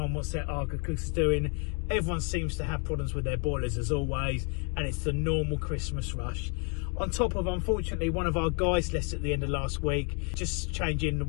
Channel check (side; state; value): right; quieter; 37.0 dB